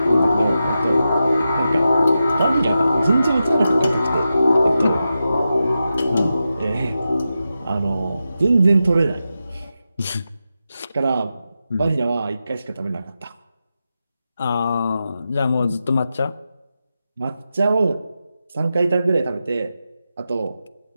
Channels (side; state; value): both; inverted; correlation -0.90